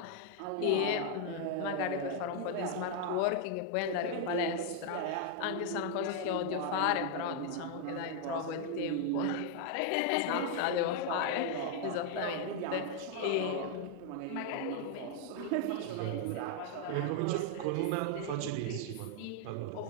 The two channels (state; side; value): different; both; correlation 0.00